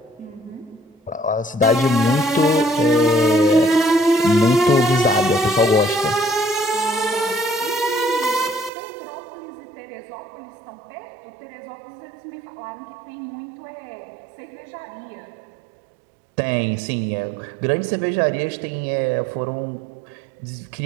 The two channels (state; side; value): drops out; left; at 8.7 s